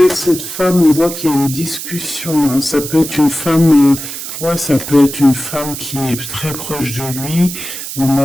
cette femme, on voit qu'il y a une discussion. Hein. Ça peut être une femme... ça peut être une femme qui est très proche de lui. On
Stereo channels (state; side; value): noise; right; hiss, 8 dB below the sound